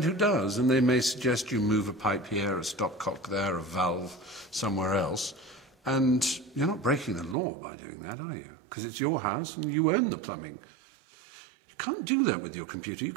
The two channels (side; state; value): left; drops out; at 7.4 s